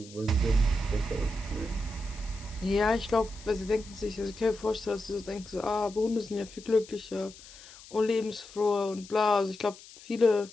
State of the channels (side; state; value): left; noise; hiss, 19 dB below the sound